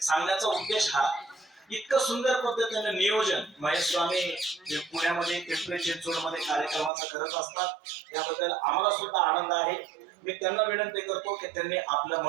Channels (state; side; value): drops out; left; at 6.9 s